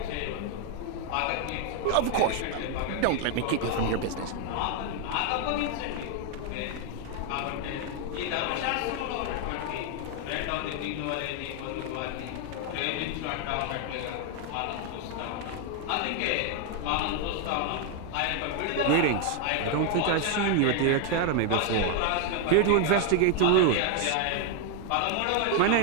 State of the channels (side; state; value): both; different; correlation 0.00